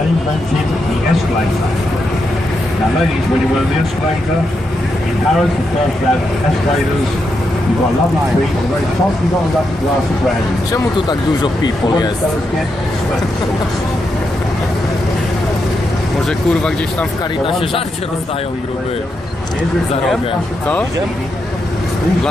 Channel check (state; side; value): normal; both; correlation 0.83